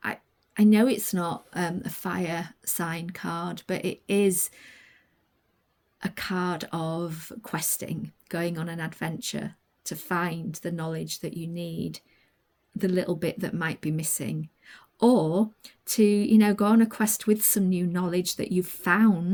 I know it's not a fire sign card, but it is a card of questing, going on an adventure to find the knowledge that you need, the little bit that might be missing, or to, you know, go on a quest with some new knowledge that you've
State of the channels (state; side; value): identical; both; correlation 1.00